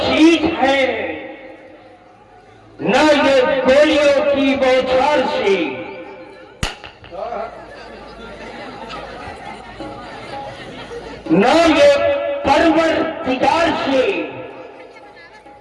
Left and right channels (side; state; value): both; identical; correlation 1.00